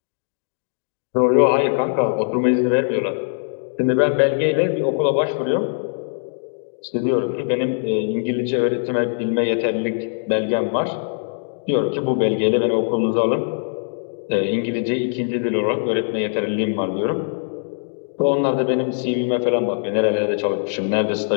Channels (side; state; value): right; silent; digital silence